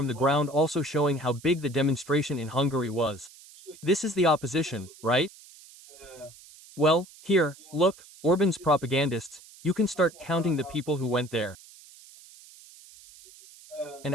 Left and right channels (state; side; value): noise; right; hiss, 22 dB below the sound